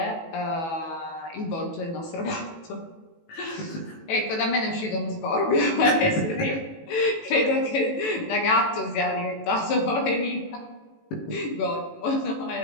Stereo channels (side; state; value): right; late; 18 ms